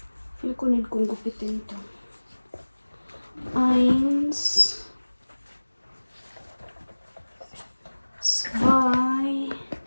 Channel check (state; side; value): inverted; both; correlation -1.00